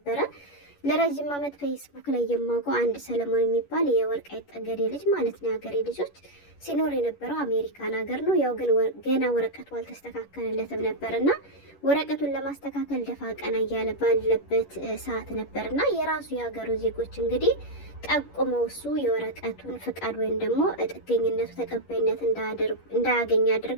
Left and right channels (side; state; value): right; late; 11 ms